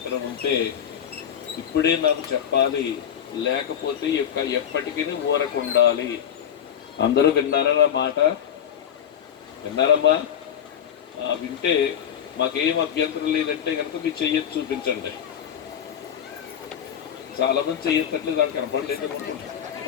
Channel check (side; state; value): right; quieter; 9.0 dB